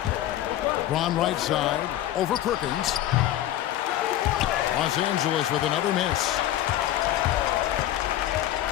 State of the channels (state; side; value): quieter; right; 13.0 dB